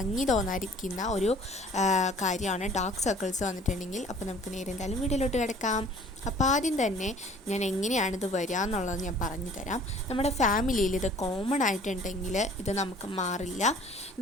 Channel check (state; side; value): normal; both; correlation 0.51